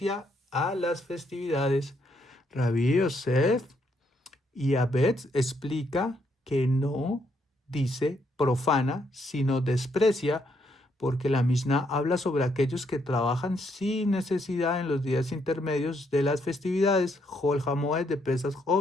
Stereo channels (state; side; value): normal; both; correlation 0.74